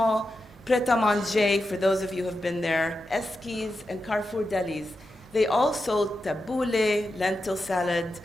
pret-a-manger, for those of you who have been there, Eskies and Carrefour delis, they all sold tabbouleh, lentil salad,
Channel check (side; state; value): both; normal; correlation 0.89